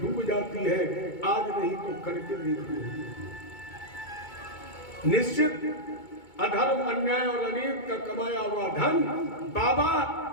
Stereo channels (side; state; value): right; late; 2.2 ms